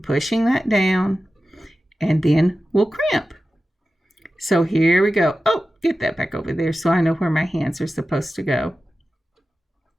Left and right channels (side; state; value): both; normal; correlation 0.94